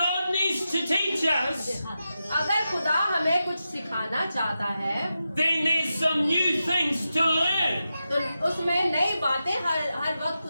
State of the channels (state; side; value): inverted; both; correlation -0.90